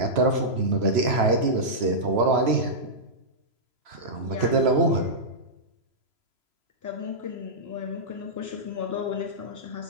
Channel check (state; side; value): late; left; 3.0 ms